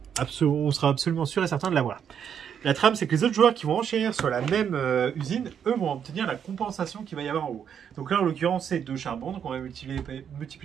on sera absolument sûr et certain de l'avoir. La trame, c'est que les autres joueurs qui vont enchérir sur la même usine, eux vont obtenir la compensation qu'il va y avoir en haut. Donc là, en l'occurrence, c'est 2 charbons, donc on va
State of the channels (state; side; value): quieter; left; 8.2 dB